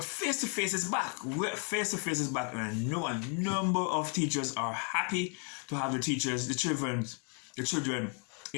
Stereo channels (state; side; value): quieter; right; 39.4 dB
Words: face-to-face is back. Face-to-face is back, and I know a number of teachers are happy to have the children